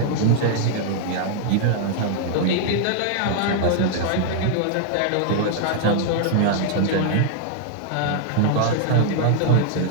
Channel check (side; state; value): both; different; correlation -0.01